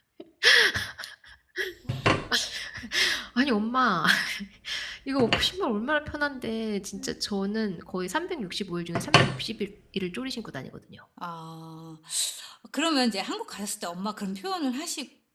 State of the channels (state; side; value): identical; both; correlation 1.00